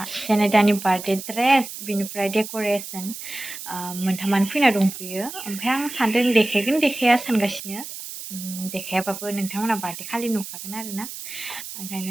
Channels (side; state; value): right; noise; hiss, 10 dB below the sound